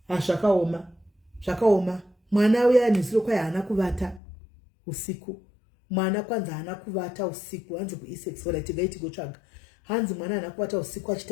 Zvakaoma. Mwana uya nisiro kwa hana kuvata usiku. Mwana kwanza hana kuvata usiku. Hanzi ku E6 wala tigaiti gotsvaga. Hanzi mwana hana kuvata usiku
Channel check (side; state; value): right; drops out; at 4.2 s